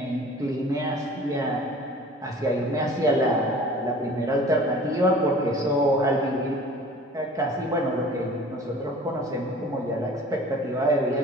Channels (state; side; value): normal; both; correlation 0.45